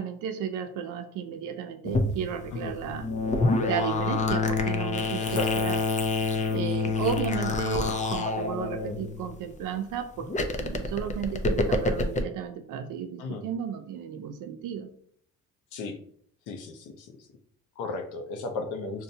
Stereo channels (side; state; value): both; normal; correlation 0.30